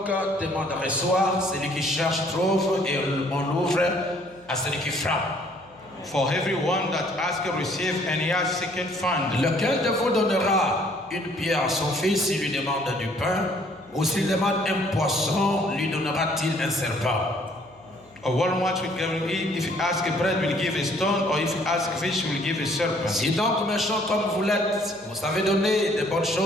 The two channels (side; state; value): left; noise; hum, 29 dB below the sound